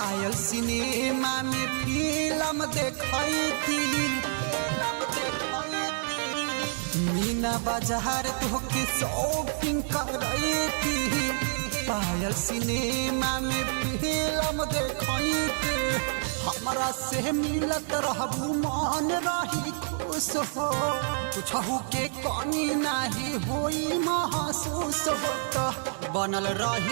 सिनेमा में फिल्म देखई थी मीना बाजार तोहके शॉपिंग करवाई थी पायल सिनेमा में फिल्म देखई थी हमरा से मिलत रहबू मन रही खुश हो कुछहू के कमी नाही होई महसूस हो तो बनल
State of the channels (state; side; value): silent; left; 59 dB below the other